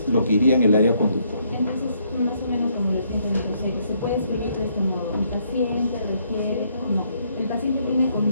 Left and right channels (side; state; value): both; inverted; correlation -0.71